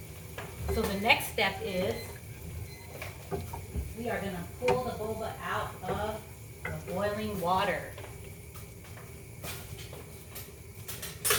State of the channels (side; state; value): both; identical; correlation 1.00